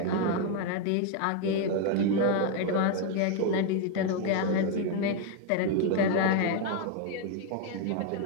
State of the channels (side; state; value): both; different; correlation 0.01